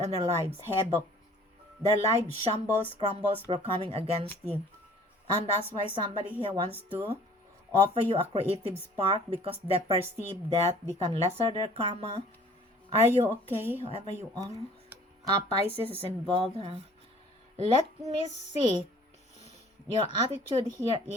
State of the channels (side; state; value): both; normal; correlation 0.52